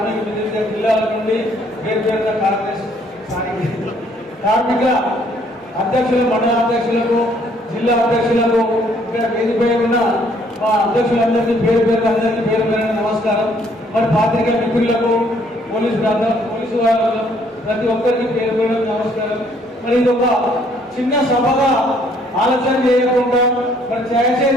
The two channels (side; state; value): both; normal; correlation 0.64